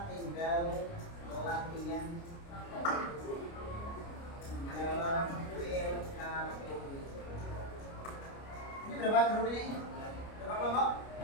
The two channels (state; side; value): late; right; 29 ms